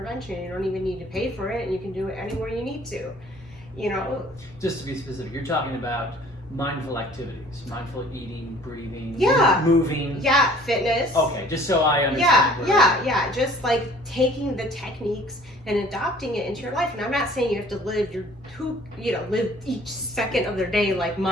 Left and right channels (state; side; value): normal; both; correlation 0.52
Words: You don't even need to pay for it, and you can do it anywhere you need to. Just to be specific, you're talking about mindful activities, mindful eating, breathing, moving. Yeah, fitness. Okay, just so I understand. Yeah. Just like taking the techniques and adopting it into your life. And I'm not saying you have to live live each second of their day like